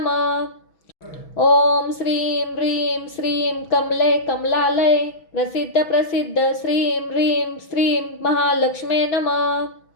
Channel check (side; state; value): right; late; 6.1 ms